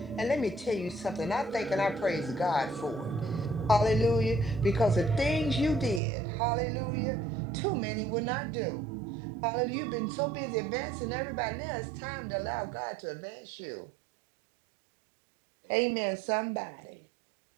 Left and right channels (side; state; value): left; drops out; at 6.0 s